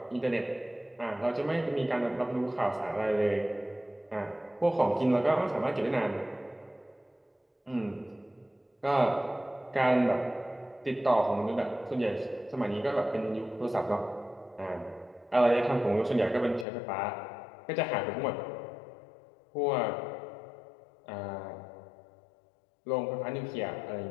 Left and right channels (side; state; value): right; drops out; at 16.7 s